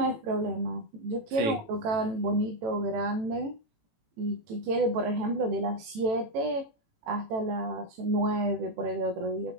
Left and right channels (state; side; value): late; left; 18 ms